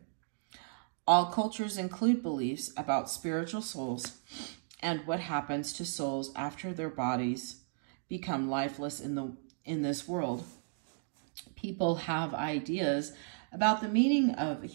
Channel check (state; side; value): silent; left; digital silence